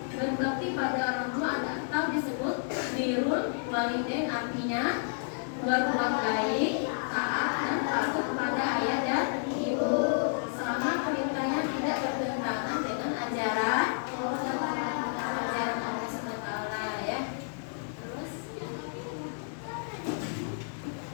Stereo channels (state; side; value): silent; right; digital silence